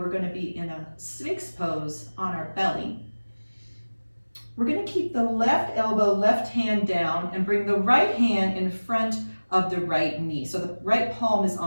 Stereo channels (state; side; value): inverted; both; correlation -1.00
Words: going to be in a Sphinx pose on our belly. We're going to keep the left elbow, left hand down, and bring the right hand in front of the right knee. So the right palm is